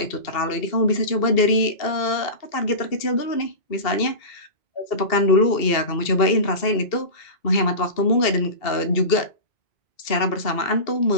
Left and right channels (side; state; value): right; late; 2.7 ms